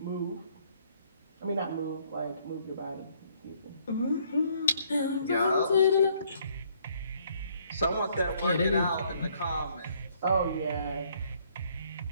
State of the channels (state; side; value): inverted; both; correlation -0.66